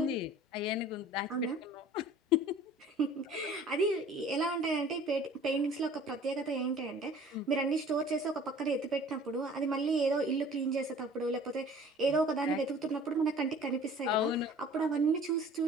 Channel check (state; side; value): normal; both; correlation 0.48